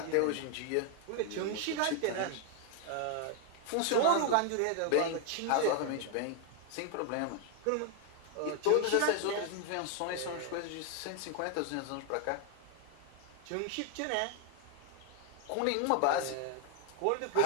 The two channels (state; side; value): different; both; correlation 0.00